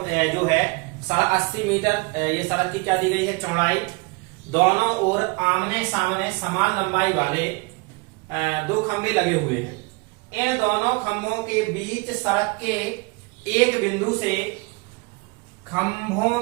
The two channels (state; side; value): quieter; left; 27.3 dB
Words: जो है 80 मीटर ये सड़क की क्या दी गई है चौड़ाई, दोनों ओर आमने सामने समान लंबाई वाले दो खंभे लगे हुए हैं। इन दोनों खंभों के बीच सड़क के एक बिंदु से खंभों